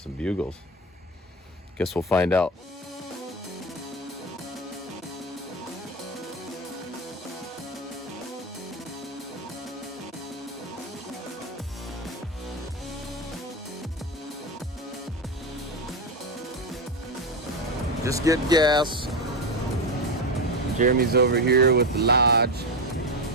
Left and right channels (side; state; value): both; normal; correlation 0.15